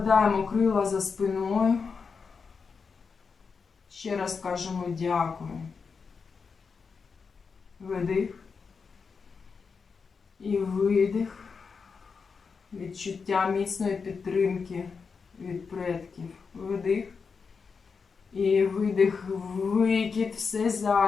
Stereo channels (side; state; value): right; quieter; 5.3 dB